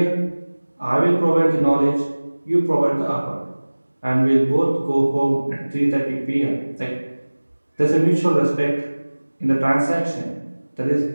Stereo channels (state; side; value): inverted; both; correlation -1.00